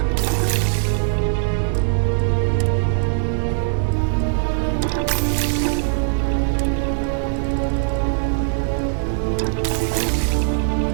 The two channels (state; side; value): silent; left; digital silence